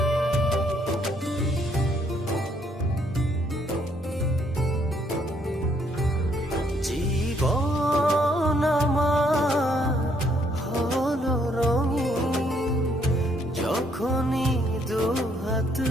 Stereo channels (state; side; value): normal; both; correlation 0.69